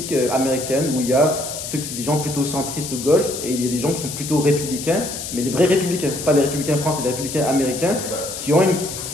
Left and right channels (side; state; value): left; noise; hiss, 7 dB below the sound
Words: américaine, où il y a des gens plutôt centristes gauche et il y a des gens qui sont plutôt républicains, mais les vrais républicains, pas les républicains français, les républicains américains, qui